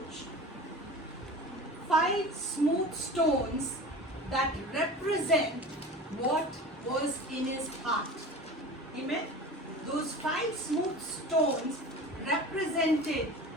5 smooth stones that represent what was in his heart. Amen. Those 5 smooth stones represented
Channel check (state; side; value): normal; both; correlation 0.36